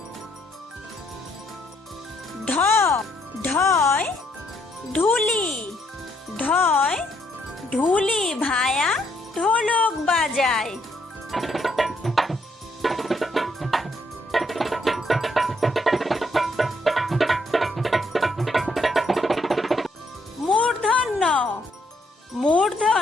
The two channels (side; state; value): both; normal; correlation 0.72